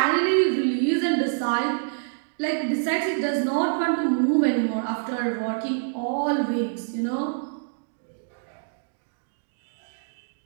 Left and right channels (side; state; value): left; silent; digital silence